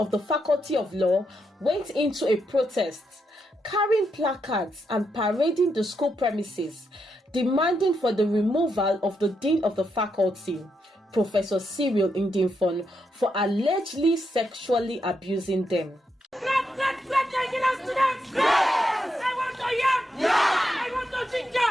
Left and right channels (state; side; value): normal; both; correlation 0.82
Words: the Faculty of Law went into a protest, carrying placards and parading the school premises, demanding for the removal of the Dean of the Faculty, Professor Ndifon, for allegedly sexually abusing them. Let Nigerian students! Yes! I want to yam! Yeah! I want to ginger!